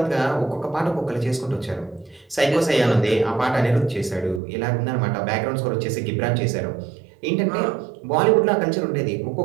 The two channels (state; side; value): drops out; left; at 4.4 s